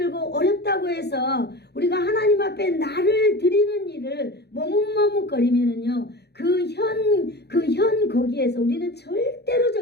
어렵다고 해서 우리가 하나님 앞에 나를 드리는 일을 머뭇머뭇거리면은요, 그 현 거기에서 우리는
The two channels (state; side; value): late; right; 0.48 ms